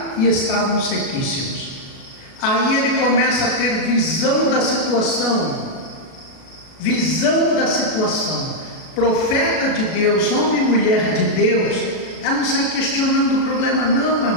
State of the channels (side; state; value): right; late; 37 ms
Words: e estavam sequíssimos. Aí ele começa a ter visão da situação. Visão da situação. Profeta de Deus, homem e mulher de Deus, ela não sai questionando o problema não, meu